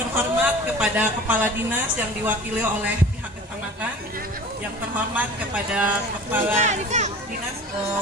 terhormat kepada Kepala Dinas yang diwakili oleh pihak kecamatan, yang terhormat kepada Kepala Dinas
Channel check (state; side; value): normal; both; correlation 0.40